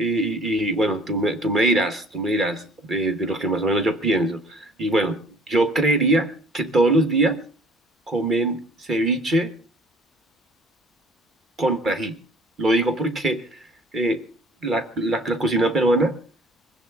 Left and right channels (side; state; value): both; normal; correlation 0.52